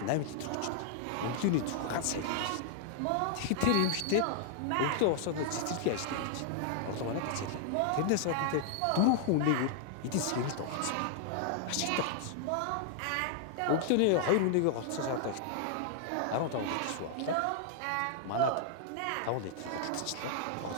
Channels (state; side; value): different; both; correlation -0.01